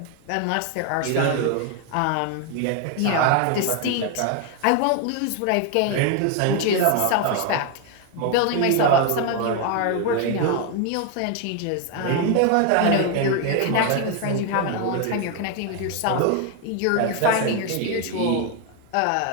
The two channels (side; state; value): both; different; correlation 0.01